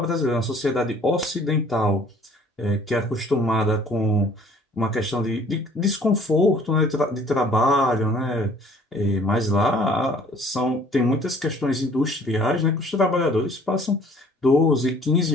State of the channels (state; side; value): normal; both; correlation 0.55